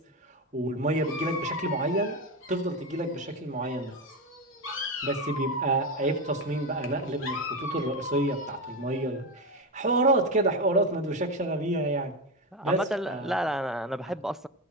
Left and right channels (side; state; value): both; normal; correlation 0.15